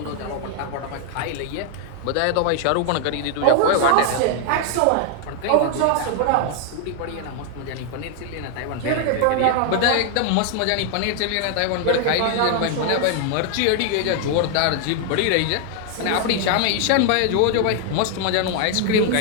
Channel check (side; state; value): both; different; correlation 0.00